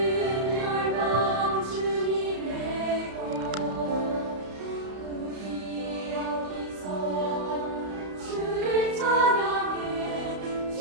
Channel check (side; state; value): left; late; 32 ms